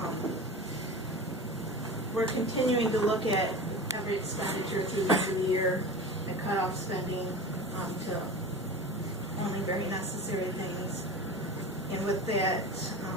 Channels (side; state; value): both; normal; correlation 0.32